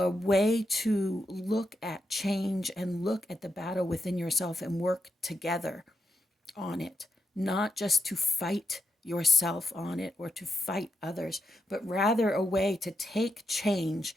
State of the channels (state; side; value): normal; both; correlation 0.84